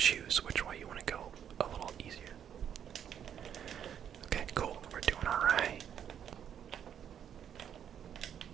which way you want to go a little easier. Okay, cool. We're doing alright.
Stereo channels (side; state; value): left; quieter; 9.0 dB